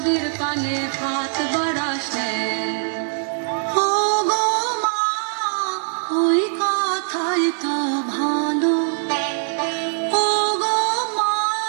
পানে হাত বাড়াস নে। ও গো মা, ওই কথাই তো ভালো। ও গো মা,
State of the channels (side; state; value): left; silent; digital silence